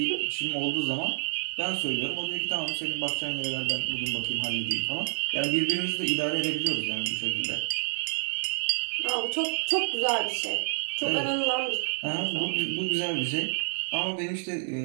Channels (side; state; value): left; silent; digital silence